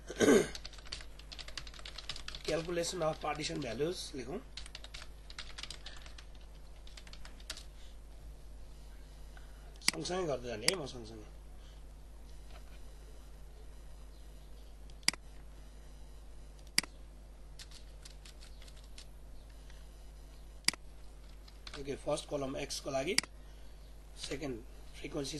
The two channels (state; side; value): identical; both; correlation 1.00